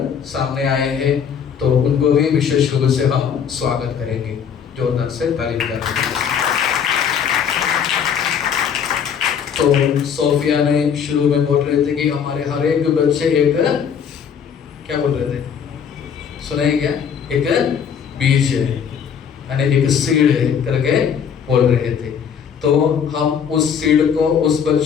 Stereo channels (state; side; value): quieter; right; 7.5 dB